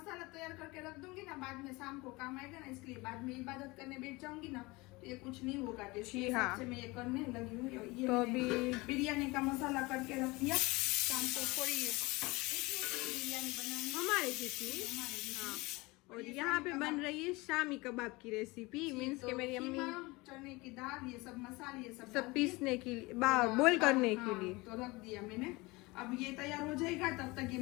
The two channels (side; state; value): right; quieter; 23.4 dB